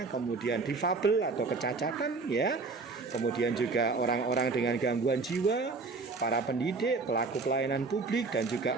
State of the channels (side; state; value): left; quieter; 4.0 dB